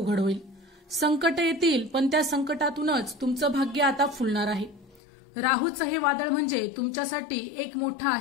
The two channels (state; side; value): drops out; right; at 5.0 s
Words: होईल. संकट येतील, पण त्या संकटातूनच तुमचं भाग्य आता फुलणार आहे. राहूचं हे वादळ म्हणजे तुमच्यासाठी एक मोठा